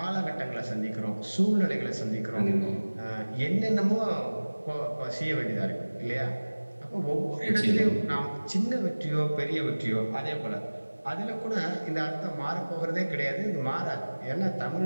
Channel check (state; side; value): inverted; both; correlation -1.00